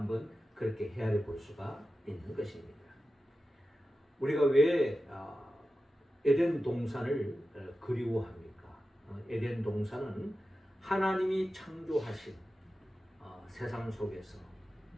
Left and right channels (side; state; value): both; normal; correlation 0.92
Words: 그렇게 헤아려 볼 수가 있는 것입니다. 우리가 왜 에덴 동산을 그리워합니까? 에덴 동산은 하나님이 창조하신 세상 속에서